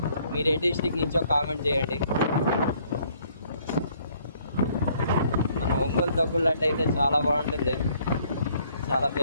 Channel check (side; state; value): both; inverted; correlation -0.64